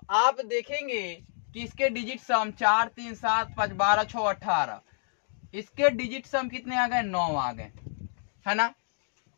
आप देखेंगे कि इसके डिजिट सम 4, 3, 7, 5, 12, 6, 18, इसके डिजिट सम कितने आ गए, 9 आ गए, है ना।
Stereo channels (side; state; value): right; silent; digital silence